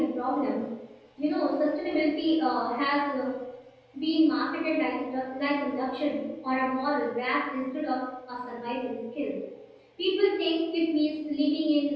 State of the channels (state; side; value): identical; both; correlation 1.00